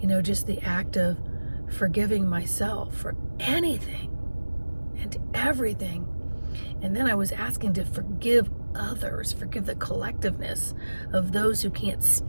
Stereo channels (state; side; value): inverted; both; correlation -1.00